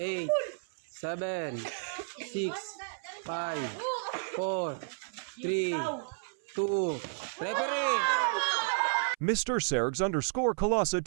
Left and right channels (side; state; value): left; silent; 56 dB below the other